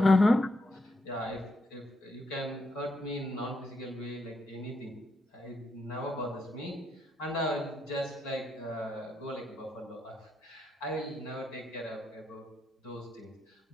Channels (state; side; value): normal; both; correlation 0.80